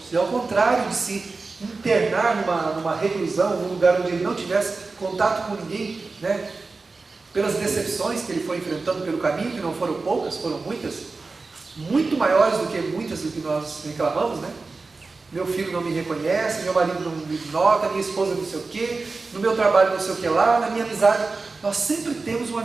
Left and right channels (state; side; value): quieter; left; 3.9 dB